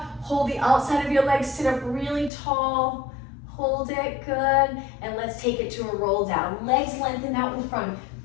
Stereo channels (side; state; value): right; drops out; at 2.3 s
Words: Hold the outside of your legs, sit up really tall. Hold it, good. And let's take it to a roll down. Legs lengthened out in front,